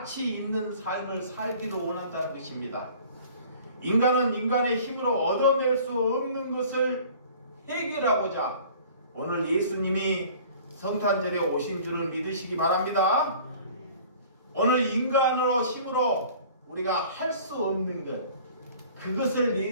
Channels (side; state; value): both; inverted; correlation -0.48